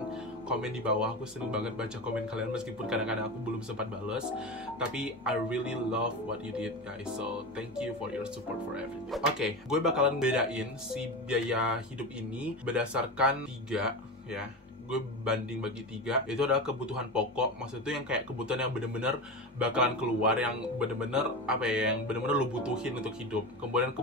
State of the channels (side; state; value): both; normal; correlation 0.23